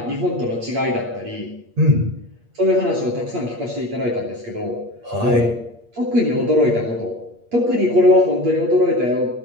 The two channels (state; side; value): late; left; 8.5 ms